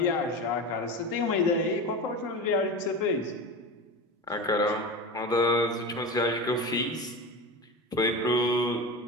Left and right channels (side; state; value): both; normal; correlation 0.26